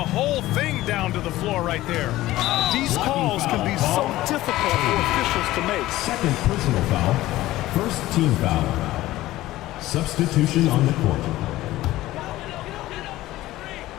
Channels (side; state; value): right; quieter; 16.4 dB